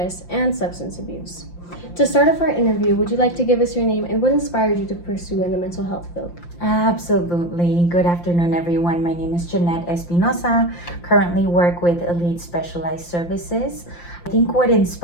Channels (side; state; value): right; late; 5.8 ms